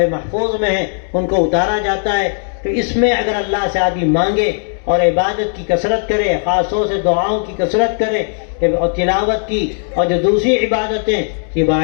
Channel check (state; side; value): silent; right; digital silence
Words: محفوظ میں ہیں، ان کو اتارا جاتا ہے۔ تو اس میں اگر اللہ سے آدمی مانگے اور عبادت کی کثرت کرے، خاص طور سے دعاؤں کی کثرت کرے اور تلاوت کی اور جو دوسری عبادتیں، یہ